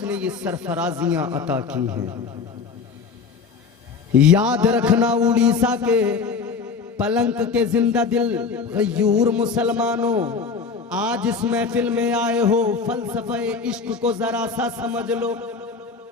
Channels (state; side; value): quieter; right; 5.1 dB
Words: ये सरफराजियां अता की हैं। याद रखना उड़ीसा के पलंक के जिंदा दिल गयूर मुसलमानों, आज इस महफिल में आए हो, फलसफे इश्क को जरा सा समझ लो।